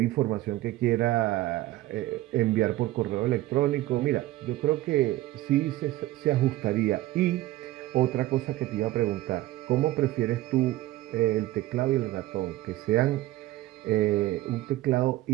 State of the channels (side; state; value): left; quieter; 16.5 dB